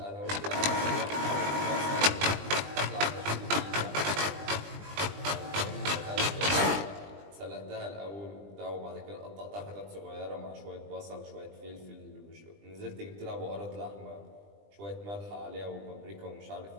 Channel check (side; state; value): left; late; 20 ms